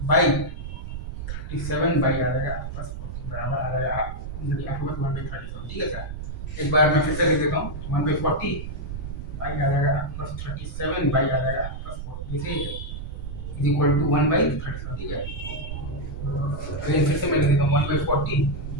बाई 37 बाई आ जाएगा आपके पास 40 बराबर आ जाएगा आपके पास 1/37, ठीक है सर। एक बार मैं फिर से लिख देता हूँ 1/40 बाई आ जाएगा आपके पास 37 बाई आ जाएगा आपके पास 40, इसे इज इक्वल टू 1/37, ठीक है। अगेन फिर से मैं लिख देता हूँ 1/40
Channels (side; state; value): right; noise; rumble, 7 dB below the sound